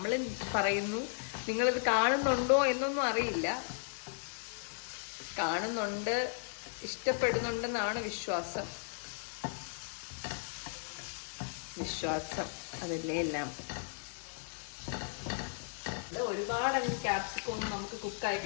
പറയുന്നു, നിങ്ങളിത് കാണുന്നുണ്ടോ എന്നൊന്നും അറിയില്ല. കാണുന്നുണ്ട്, ഇഷ്ടപ്പെടുന്നുണ്ടെന്നാണ് വിശ്വാസം. അതല്ലേ എല്ലാം. ഒരുപാട് ക്യാപ്സിക്കം ഒന്നും നമുക്ക് കുക്കായി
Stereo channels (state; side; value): silent; right; digital silence